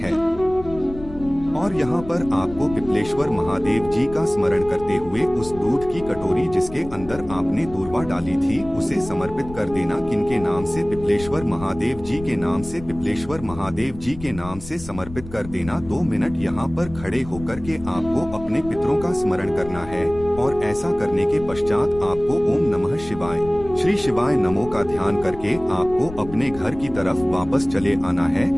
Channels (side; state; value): left; noise; rumble, 15 dB below the sound